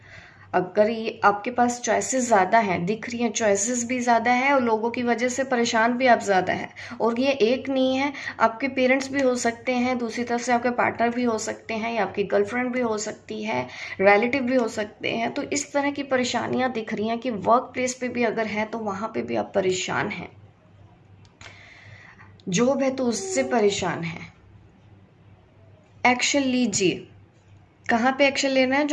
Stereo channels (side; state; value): both; identical; correlation 1.00